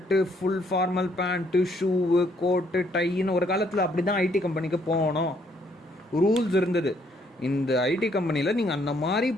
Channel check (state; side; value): normal; both; correlation 0.68